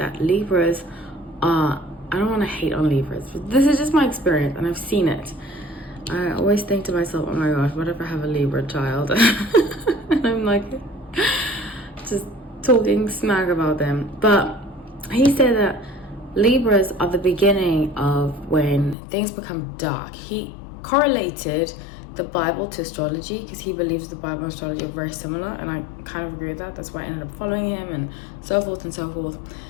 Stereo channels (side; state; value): right; drops out; at 18.9 s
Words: Libras are, I don't want to hate on Libras, but this is just my experience, and I've seen it. I always think to myself, oh my gosh, what if I have a Libra child? And I'm like, just talking smack about them. But he said that Libras are the beginning of when things become dark. He correlated the Bible to astrology, because he believes the Bible and astrology are very similar, and I kind of agree with that. That's why I ended up following him, and so forth and so forth.